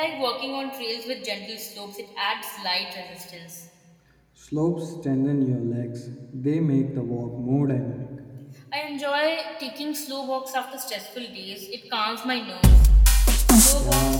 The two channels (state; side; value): identical; both; correlation 1.00